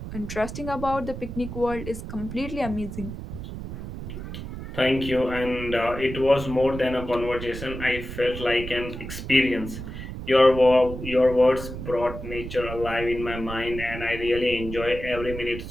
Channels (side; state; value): right; noise; rumble, 9 dB below the sound